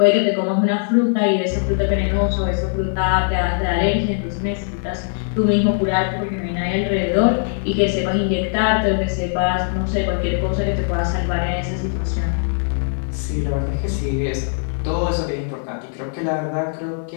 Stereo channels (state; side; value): silent; right; digital silence